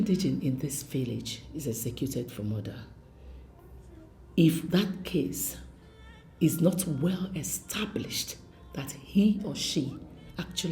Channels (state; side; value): identical; both; correlation 1.00